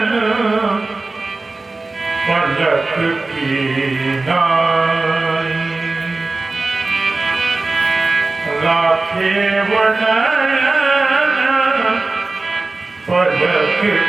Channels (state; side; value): quieter; left; 3.4 dB